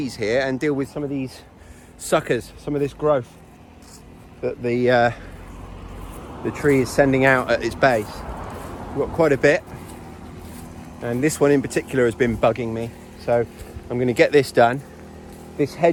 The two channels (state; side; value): identical; both; correlation 1.00